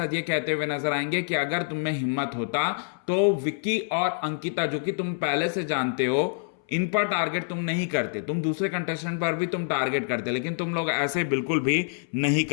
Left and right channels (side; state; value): right; silent; 61 dB below the other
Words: ये कहते हुए नजर आएंगे कि अगर तुम में हिम्मत होता तो विक्की और अंकिता, जो कि तुम पहले से जानते हो, इन पर टारगेट तुम नहीं करते, तुम दूसरे कंटेस्टेंट पर भी तुम टारगेट करते, लेकिन तुम लोग ऐसे बिल्कुल भी नहीं